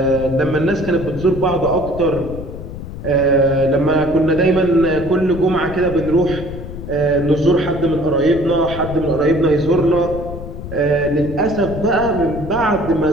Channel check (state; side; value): noise; left; rumble, 10 dB below the sound